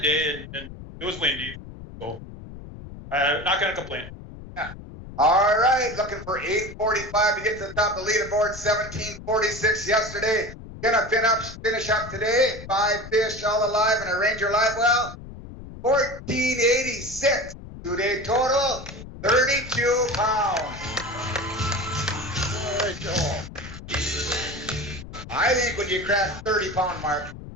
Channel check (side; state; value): left; noise; rumble, 13 dB below the sound